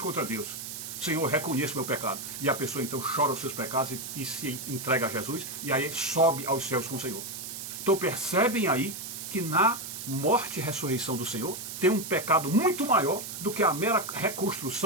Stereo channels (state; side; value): noise; right; hiss, 8 dB below the sound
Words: Deus. Senhor, eu reconheço meu pecado. E a pessoa então chora os seus pecados e se entrega a Jesus, e aí sobe aos céus com o Senhor. Então percebem aí que na morte e ressurreição do Senhor tem um pecado muito maior do que a mera